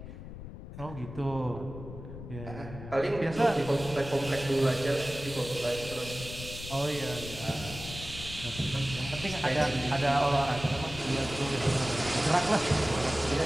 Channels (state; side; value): noise; left; rumble, 11 dB below the sound